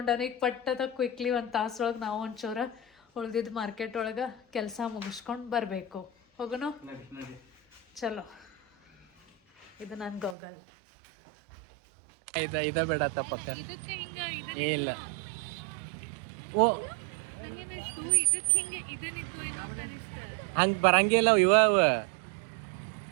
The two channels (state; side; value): drops out; left; at 10.4 s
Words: ಈಗ ಪಟ್ಟದ ಕ್ವಿಕ್ಲಿ ಒಂದು ತಾಸೊಳಗೆ ನಾವು ಒಂಚೂರು ಉಳ್ದಿದ್ದು ಮಾರ್ಕೆಟ್ ಒಳಗೆ ಕೆಲಸ ಮುಗಿಸ್ಕೊಂಡು ಬರಬೇಕು. ಹೋಗೋಣ ಚಲೋ. ಇದು ನನ್ನ ಗೋಗಲ್. ಇದ ಬೇಡ ತಪ್ಪಕ್ಕ. ಇಲ್ಲ ಓ ಹಂಗೆ ಬರಂಗಿಲ್ಲ ಇವ.